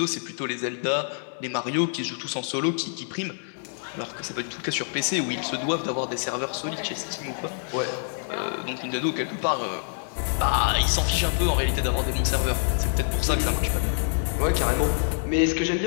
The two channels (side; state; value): right; silent; digital silence